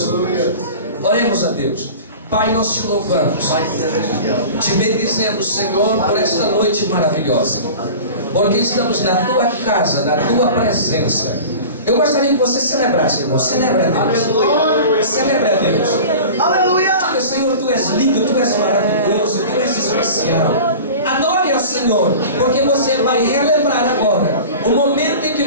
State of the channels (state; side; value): inverted; both; correlation -0.36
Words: Deus. Oremos a Deus. Pai, nós te louvamos, te bendizemos, Senhor, por esta noite maravilhosa, porque estamos na tua casa, na tua presença. Eu gostaria que você celebrasse, irmão. Celebre a Deus. Celebre a Deus. Aleluia! Diga: Senhor, tu és lindo, tu és maravilhoso, tu és especial. Adore ao Senhor, porque você vai relembrar agora o momento em que